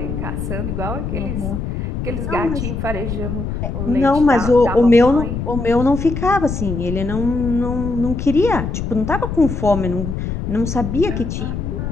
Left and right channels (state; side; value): noise; left; rumble, 4 dB below the sound